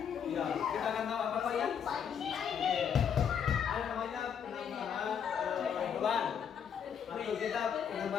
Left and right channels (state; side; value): quieter; right; 7.8 dB